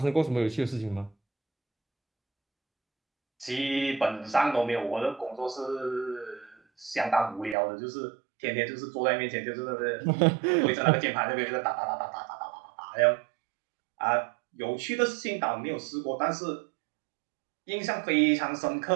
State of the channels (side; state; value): left; drops out; at 7.6 s